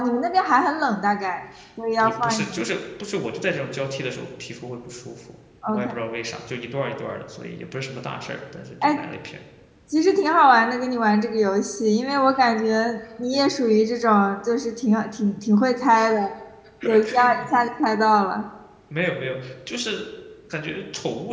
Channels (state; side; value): identical; both; correlation 1.00